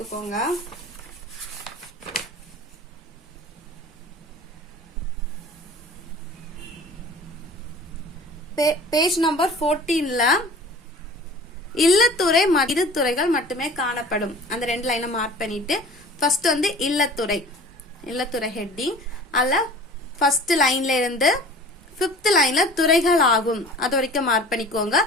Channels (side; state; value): both; normal; correlation 0.43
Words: பேஜ் நம்பர் 14ல இல்லத்துறை இரு துறைகள் மட்டுமே காணப்படும், அந்த 2 லைனை மார்க் பண்ணிட்டு ஃபர்ஸ்ட் வந்து இல்லத்துறை ஹெட்டிங் அல்ல ஃபர்ஸ்ட் லைன்ல இருந்து 5th லைன்ல துறைகள் ஆகும் அது வரைக்கும் மார்க் பண்ணிக்கோங்க.